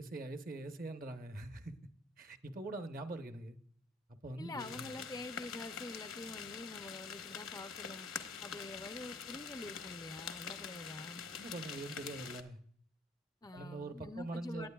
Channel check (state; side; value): normal; both; correlation 0.57